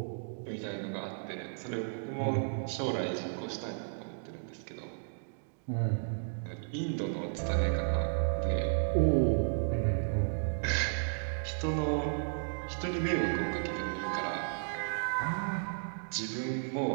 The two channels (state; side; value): silent; left; digital silence